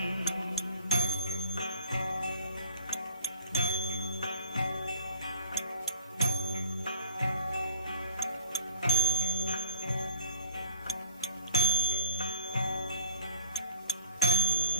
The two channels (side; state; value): both; inverted; correlation -0.45